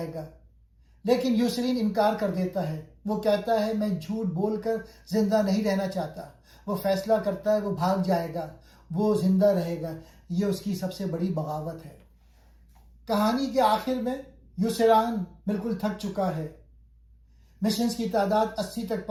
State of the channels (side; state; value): both; identical; correlation 1.00